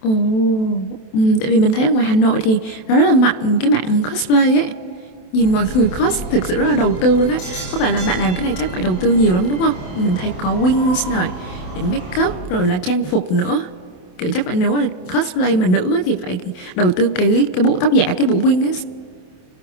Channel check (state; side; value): late; right; 27 ms